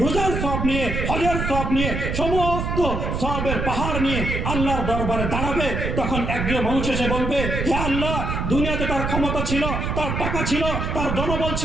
রোজার সওয়াব নিয়ে, হজের সওয়াব নিয়ে, সমস্ত সওয়াবের পাহাড় নিয়ে আল্লাহর দরবারে দাঁড়াবে। তখন একজন মানুষ এসে বলবে, হে আল্লাহ, দুনিয়াতে তার ক্ষমতা ছিল, তার টাকা ছিল, তার জনবল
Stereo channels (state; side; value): noise; right; rumble, 2 dB below the sound